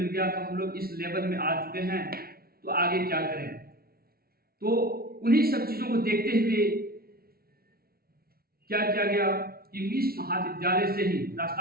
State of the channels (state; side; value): late; left; 0.44 ms